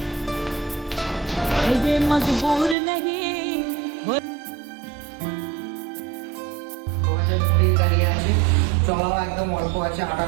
ये मजबूर नहीं 2020 গাড়ি আছে, চলাও একদম অল্প আছে,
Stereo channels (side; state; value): left; drops out; at 2.8 s